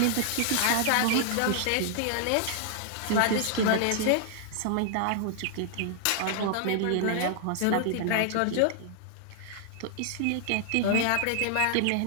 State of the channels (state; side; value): different; both; correlation 0.00